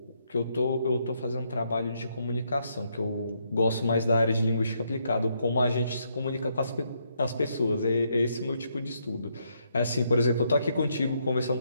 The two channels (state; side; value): inverted; both; correlation -0.76